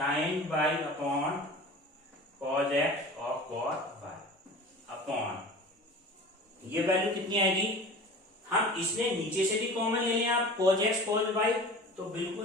y upon cos x और cos y अपॉन, ये वैल्यू कितनी आएगी, हम इसमें नीचे से भी कॉमन ले लें आप, cos x cos y, तो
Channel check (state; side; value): normal; both; correlation 0.38